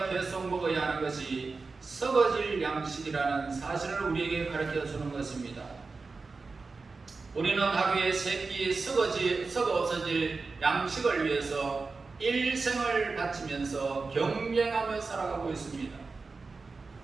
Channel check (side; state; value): left; quieter; 4.1 dB